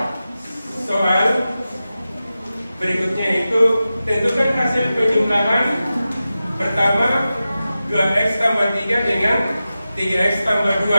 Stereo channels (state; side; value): inverted; both; correlation -0.93